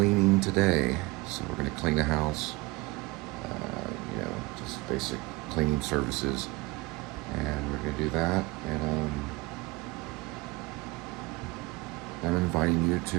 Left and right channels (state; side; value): quieter; left; 23.0 dB